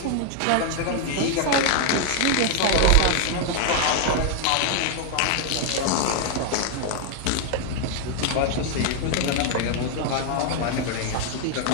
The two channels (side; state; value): both; different; correlation 0.00